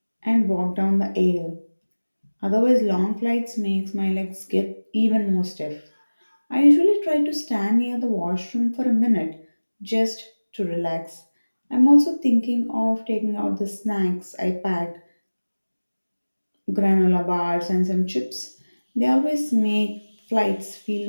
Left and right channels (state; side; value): inverted; both; correlation -1.00